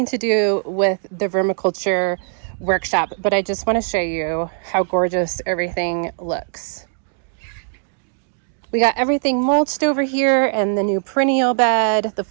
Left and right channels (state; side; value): silent; left; digital silence